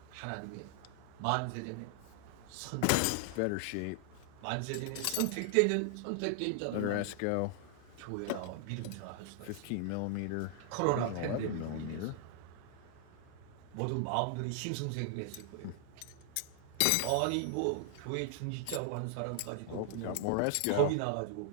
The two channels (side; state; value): both; different; correlation 0.00